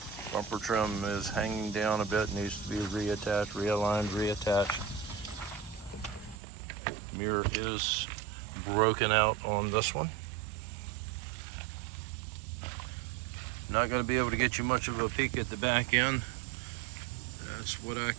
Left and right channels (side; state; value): left; drops out; at 6.4 s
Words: Bumper trim is hanging down a bit, needs to be reattached, realigned, reattached. Mirror is broken out on this one. Not going to be able to get you much of a peek at the back end. That's what I